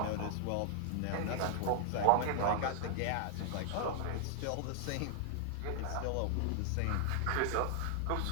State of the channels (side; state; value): both; different; correlation 0.00